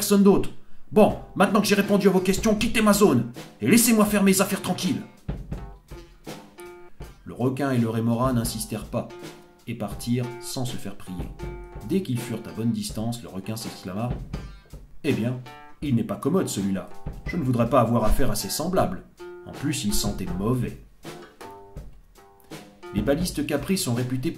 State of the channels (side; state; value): both; identical; correlation 1.00